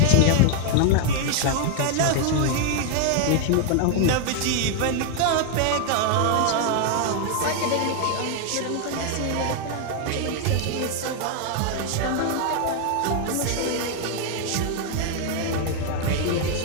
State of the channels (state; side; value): different; both; correlation 0.00